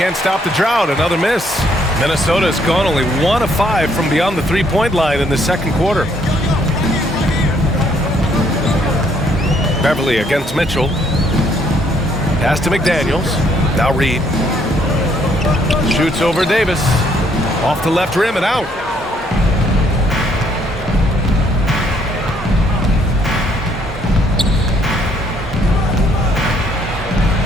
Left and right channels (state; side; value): normal; both; correlation 0.68